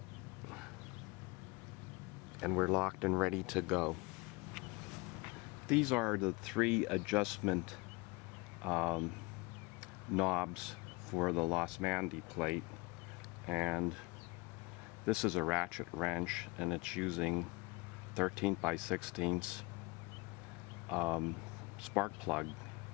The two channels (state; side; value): quieter; right; 26.0 dB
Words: And we're locked and ready to go. These are the 3 adjustment knobs for the Los Mandy plate. And this is a ratchet wrench, and it's using 13 by 16 spark plug